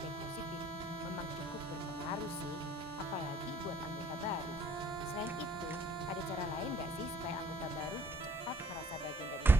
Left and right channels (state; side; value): normal; both; correlation 0.59